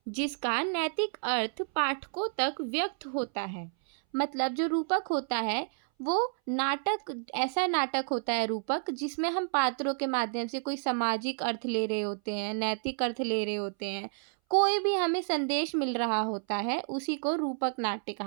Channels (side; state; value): left; silent; 58 dB below the other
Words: जिसका नैतिक अर्थ पाठकों तक व्यक्त होता है। मतलब जो रूपक होता है वो नाटक, ऐसा नाटक होता है रूपक जिसमें हम पात्रों के माध्यम से कोई सामाजिक अर्थ ले रहे होते हैं, नैतिक अर्थ ले रहे होते हैं, कोई भी हमें संदेश मिल रहा होता है, उसी को रूपक नाट्य